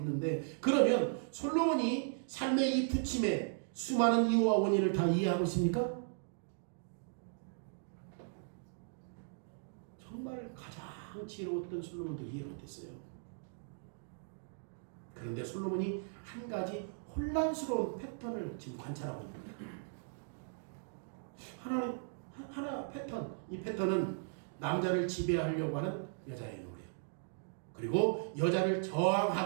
그러면 솔로몬이 삶의 이 부침에 수많은 이유와 원인을 다 이해하고 있습니까? 정말 가장 지혜로웠던 솔로몬도 이해를 못했어요. 그런데 솔로몬이 한 가지 혼란스러운 패턴을 지금 관찰하고 있는 거예요. 하나 패턴, 이 패턴은 남자를 지배하려고 하는 여자의 노래, 그리고 여자를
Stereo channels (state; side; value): silent; left; digital silence